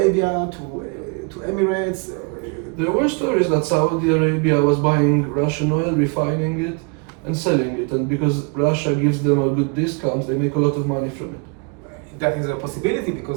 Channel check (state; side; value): quieter; left; 33.0 dB